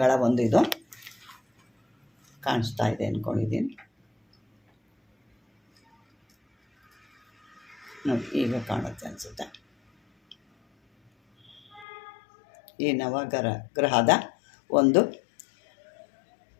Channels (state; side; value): drops out; right; at 11.9 s